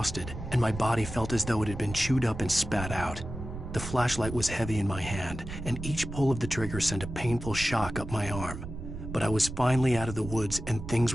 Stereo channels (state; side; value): noise; right; rumble, 9 dB below the sound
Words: and my body felt as though it had been chewed up and spat out. The flashlight was heavy in my hand, and each pull of the trigger sent a painful shock up my arm. But I was finally out of the woods, and things